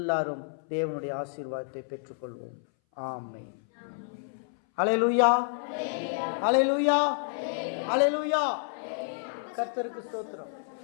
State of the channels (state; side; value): silent; right; 58 dB below the other